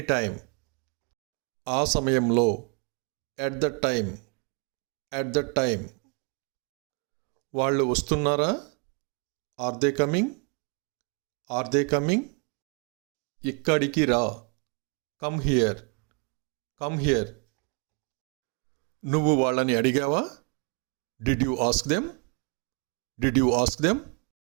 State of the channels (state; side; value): quieter; left; 35.7 dB